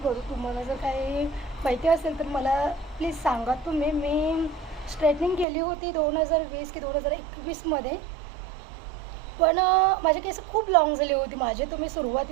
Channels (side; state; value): left; drops out; at 5.5 s